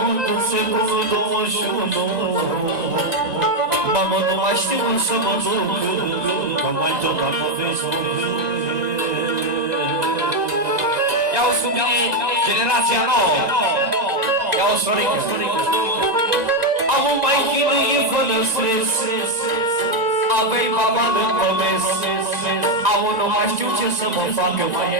din secolul 21. Mamă, nu mai știu să mă duc, că mai tot am o vezi. Ia-o sub mine, generația nouă. Ia-o sorică. Am un mai chinuie fără stres, avei baba în comes. Am nu mai știu ce să mă facă, mai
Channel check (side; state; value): left; late; 1.9 ms